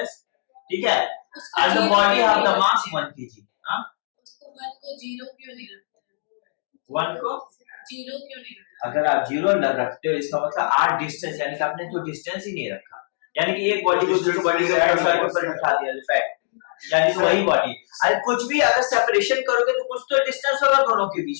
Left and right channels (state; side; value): silent; right; digital silence